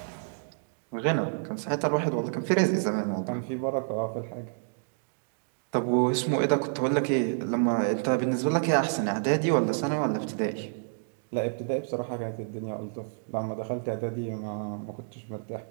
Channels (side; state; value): left; silent; digital silence